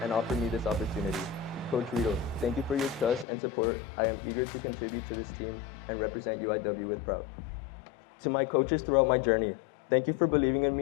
and offered me this opportunity. Coach Rito, thank you for your trust and support. I am eager to contribute to this team and represent UIW with pride. To my coaches throughout my journey, thank you for believing in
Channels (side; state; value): right; drops out; at 3.2 s